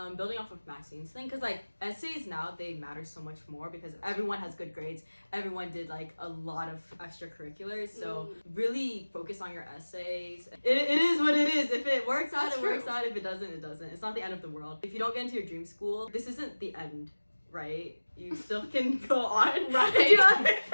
building off of Maxine's thing, because like essays now, they matter so much more because everyone has good grades. Everyone did like a lot of extracurriculars. So really focus on your essays. It is what it is. If it works out, That's it works true. out. If it doesn't, it doesn't. It's not the end of the world. If you don't get into your dream school, this isn't the end, right? You still can go on, Right. Do you know what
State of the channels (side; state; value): both; inverted; correlation -1.00